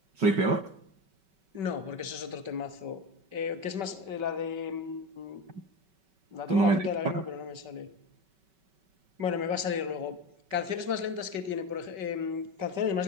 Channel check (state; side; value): late; left; 5.2 ms